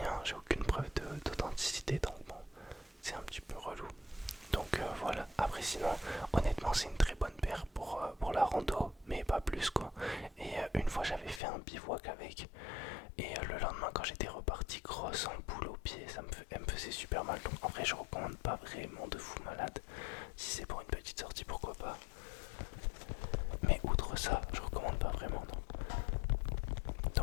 j'ai aucune preuve d'authenticité, donc bon, c'est un petit peu relou. Donc voilà, après sinon honnêtement c'est une très bonne paire pour la rando, mais pas plus quoi. Et une fois j'avais fait un bivouac avec, et le lendemain quand j'étais reparti, grosse ampoule au pied, elle me faisait super mal. Donc en vrai je recommande pas vraiment de fou malade. Si c'est pour une petite sortie pourquoi pas, mais outre ça je recommande pas vraiment non.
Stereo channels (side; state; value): right; drops out; at 11.4 s